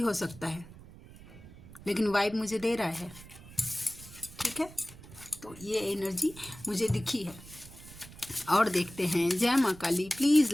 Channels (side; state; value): right; noise; rumble, 18 dB below the sound